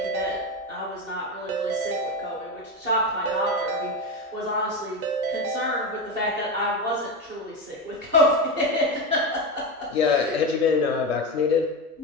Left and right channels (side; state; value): both; normal; correlation 0.16